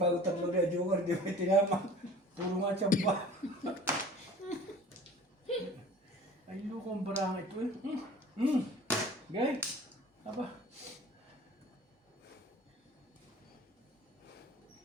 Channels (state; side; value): normal; both; correlation 0.45